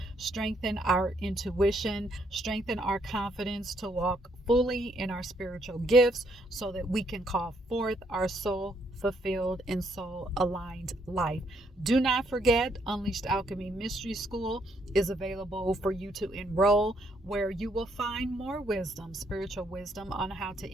strengthen our intuition, strengthen our confidence to walk fully in our spiritual gifts so that we can call forth our soul fulfilled and soul aligned life. Do not forget, Unleashed Alchemy Mystery School is available for you to enroll, where you will find more wisdom, spiritual wisdom, on how to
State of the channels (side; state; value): both; normal; correlation 0.72